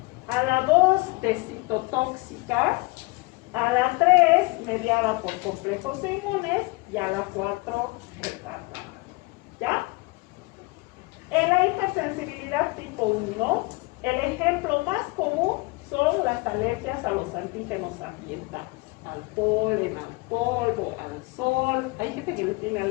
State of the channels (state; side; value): quieter; right; 24.8 dB